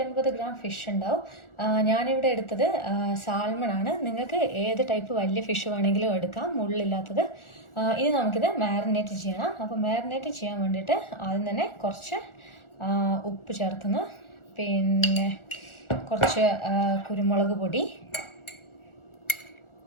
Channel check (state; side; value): late; right; 1.4 ms